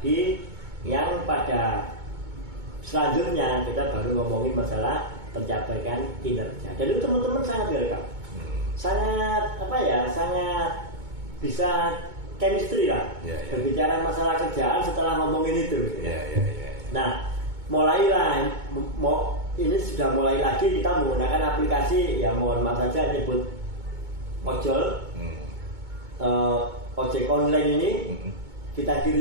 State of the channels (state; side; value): late; left; 2.2 ms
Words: yang pada selanjutnya kita baru ngomongin masalah pencapaian kinerja. Dan itu teman-teman sangat welcome. Sangat bisa chemistry lah. Berbicara masalah kerjaan setelah ngomongin itu. Nah, mulailah ini sudah mulai lagi kita menggunakan aplikasi, ya mohon maaf saja nyebut ojol, ojek online ini kita